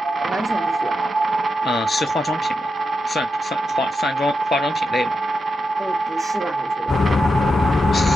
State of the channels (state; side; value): normal; both; correlation 0.87